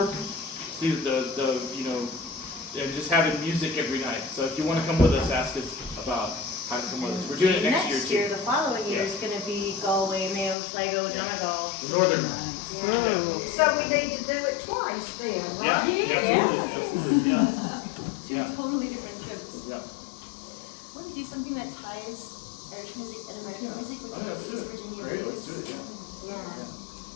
to the and just having music every night. So if you want to come with us, ask us about how to come with us. We're doing it next year too. The following year is going to be Galway, Mayo, Sligo, Donegal. The northern. So we need to do it twice then, Yeah, right? absolutely, yeah. Yeah. Totally different trips. Yeah. Want to do something that ties Irish music and American music with Oh, yeah, let's do East it. Virginia Great, blues? let's do it, yeah. Yeah.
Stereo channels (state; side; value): drops out; right; at 10.6 s